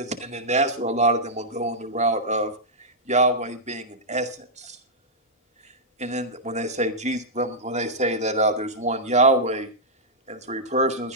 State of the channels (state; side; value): normal; both; correlation -0.09